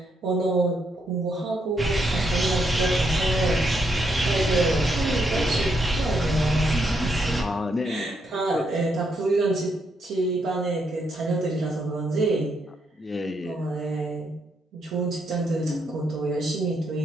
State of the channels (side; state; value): both; normal; correlation 0.77